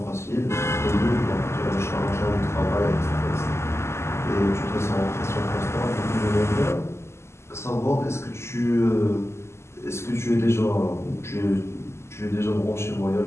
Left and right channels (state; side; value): late; right; 0.13 ms